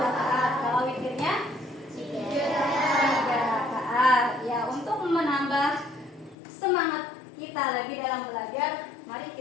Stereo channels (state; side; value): drops out; right; at 6.4 s